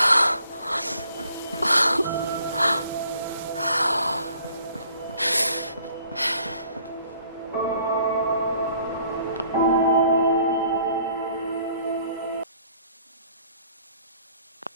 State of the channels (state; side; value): inverted; both; correlation -0.59